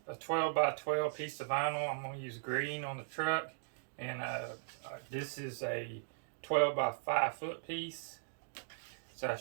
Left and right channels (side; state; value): left; silent; digital silence